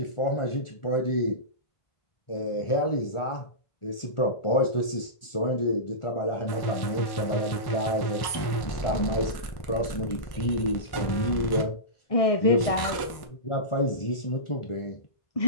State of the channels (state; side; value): late; right; 1.1 ms